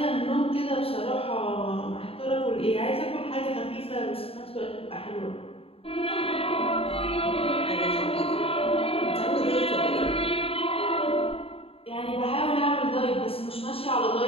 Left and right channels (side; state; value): right; late; 0.27 ms